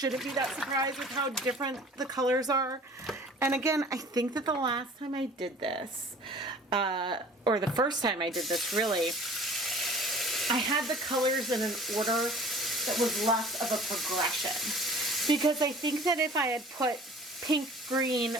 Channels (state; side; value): normal; both; correlation 0.47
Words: be that surprised with how different the colors are. And again, I think that the last time I did this, or the first time I did this really, I had the colors in an order that was less of a progression. Because I think that if I had put pink, green,